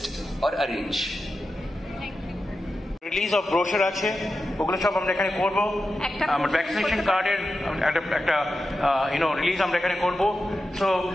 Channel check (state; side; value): normal; both; correlation 0.91